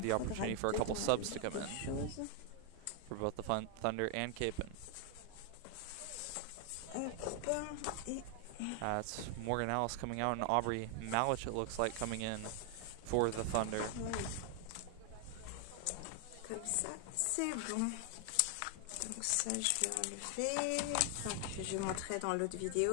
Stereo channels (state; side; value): different; both; correlation 0.00